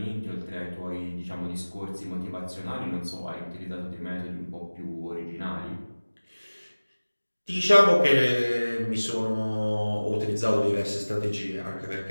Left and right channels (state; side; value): inverted; both; correlation -1.00